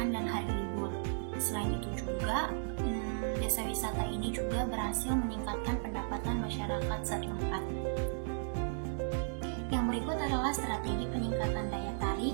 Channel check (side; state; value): left; silent; digital silence